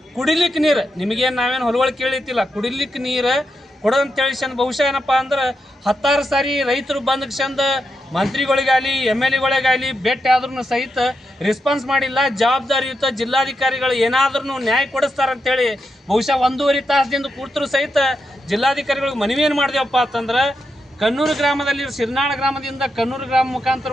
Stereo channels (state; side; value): normal; both; correlation 0.85